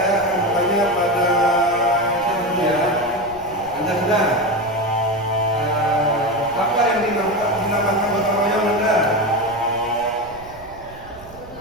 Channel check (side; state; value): right; noise; rumble, 21 dB below the sound